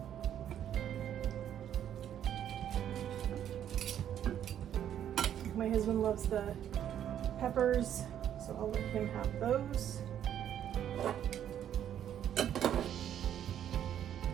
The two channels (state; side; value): quieter; left; 10.2 dB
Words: My husband loves the peppers, so I'll let him have those.